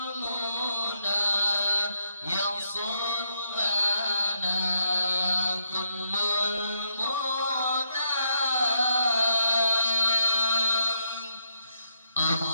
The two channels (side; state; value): both; inverted; correlation -0.78